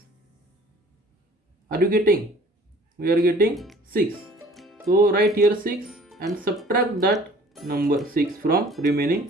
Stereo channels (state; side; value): normal; both; correlation 0.51